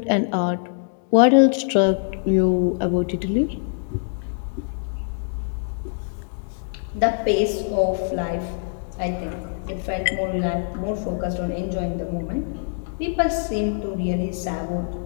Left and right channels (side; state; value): right; silent; 63 dB below the other